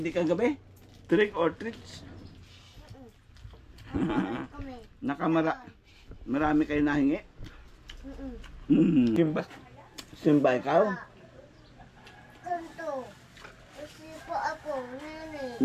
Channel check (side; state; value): both; identical; correlation 1.00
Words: kagabi? Trick or treats? Marami kayo nahingi? Simba ikaw? Kanto. Kasi po ako, nene.